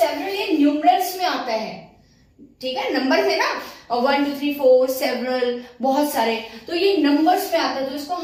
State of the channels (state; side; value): identical; both; correlation 1.00